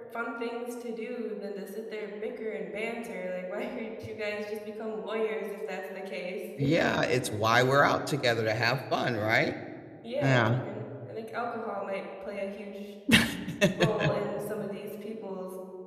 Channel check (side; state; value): both; identical; correlation 1.00